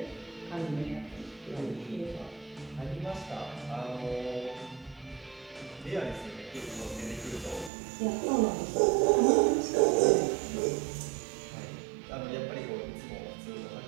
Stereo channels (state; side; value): drops out; left; at 7.7 s